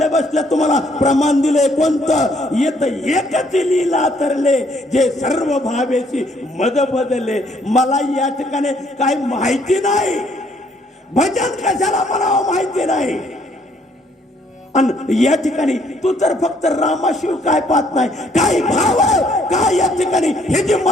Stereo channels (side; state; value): both; normal; correlation 0.66